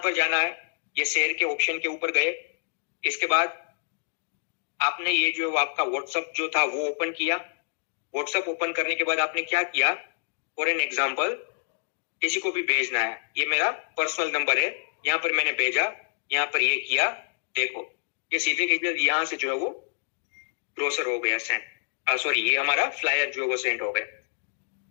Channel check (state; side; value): silent; right; digital silence